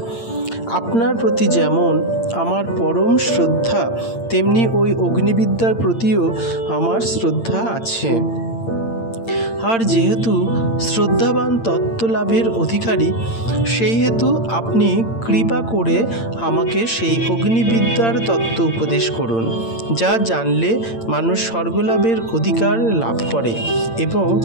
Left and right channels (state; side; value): late; right; 8.8 ms